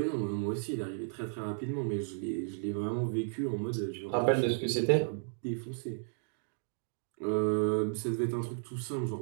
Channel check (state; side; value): silent; left; digital silence